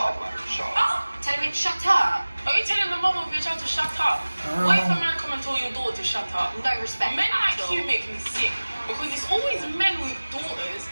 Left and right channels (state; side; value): inverted; both; correlation -1.00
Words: up, man. Shut up. Tell me to shut up. Are you telling the mother of your child to shut up? What if a man come and tell your daughter to shut up? No respect Men at like all. you make me sick because it's always men with daughters